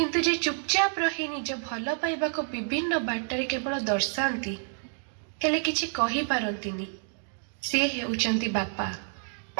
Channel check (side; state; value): left; silent; digital silence